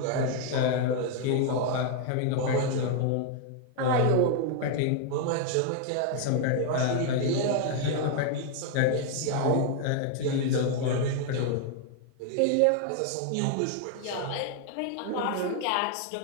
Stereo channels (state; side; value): different; both; correlation 0.00